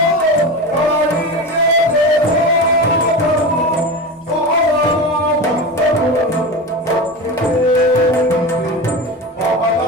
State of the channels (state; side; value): normal; both; correlation 0.25